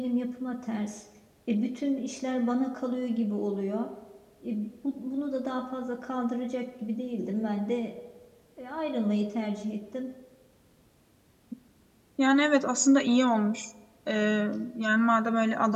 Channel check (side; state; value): both; identical; correlation 1.00